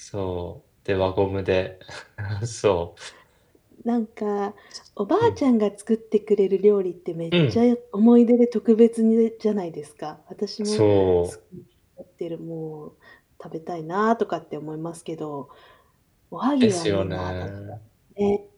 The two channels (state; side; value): identical; both; correlation 1.00